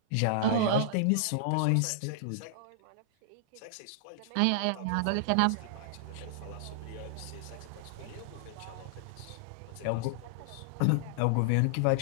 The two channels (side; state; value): both; different; correlation -0.01